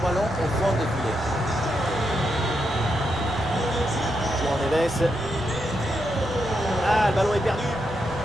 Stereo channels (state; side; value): noise; left; rumble, 15 dB below the sound